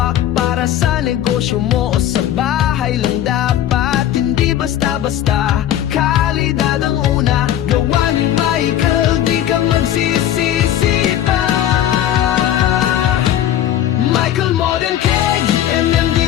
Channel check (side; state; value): right; quieter; 11.5 dB